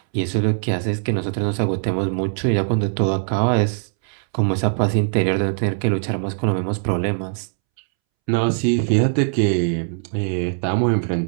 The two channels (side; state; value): left; silent; 65 dB below the other